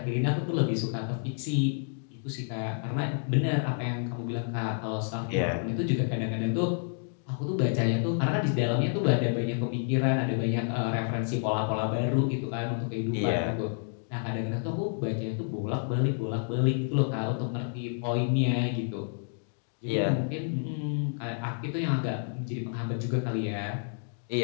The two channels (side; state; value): right; silent; digital silence